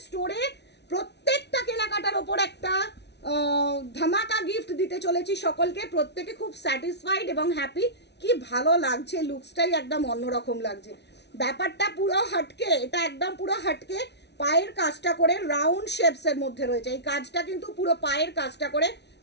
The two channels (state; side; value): late; right; 0.50 ms